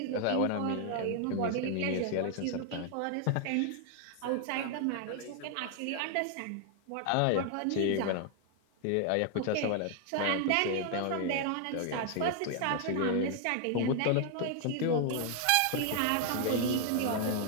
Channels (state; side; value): different; both; correlation 0.00